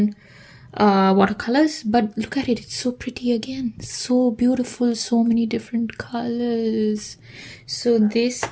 watercolors. But look at it, it's so pretty again. So beautiful, so many different colors. So this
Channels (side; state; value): both; identical; correlation 1.00